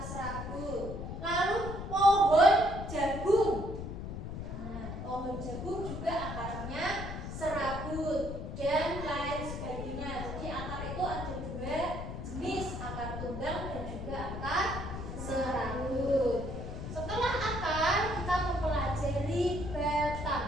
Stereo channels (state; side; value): noise; left; rumble, 7 dB below the sound